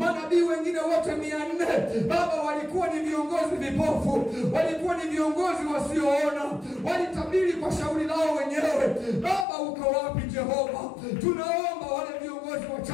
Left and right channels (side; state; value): right; drops out; at 9.5 s